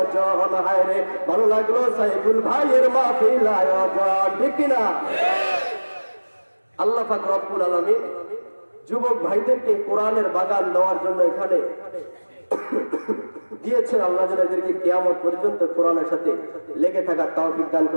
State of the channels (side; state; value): both; inverted; correlation -1.00